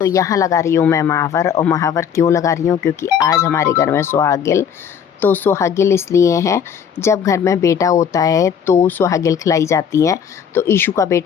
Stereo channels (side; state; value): right; quieter; 7.8 dB